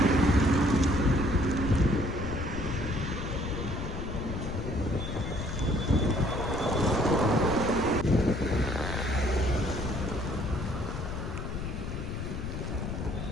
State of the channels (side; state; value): left; noise; rumble, 5 dB below the sound